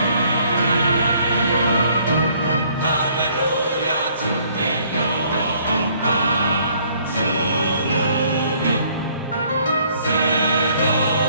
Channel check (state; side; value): inverted; both; correlation -0.62